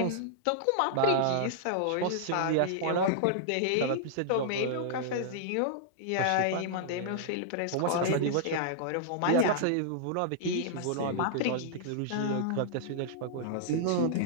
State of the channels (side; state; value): both; different; correlation -0.01